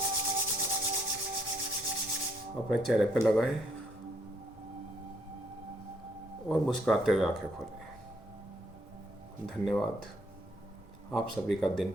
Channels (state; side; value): normal; both; correlation 0.70